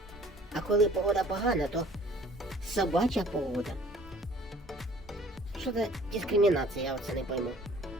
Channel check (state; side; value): normal; both; correlation 0.52